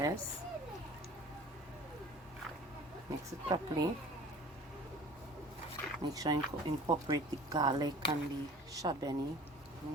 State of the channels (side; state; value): both; normal; correlation 0.45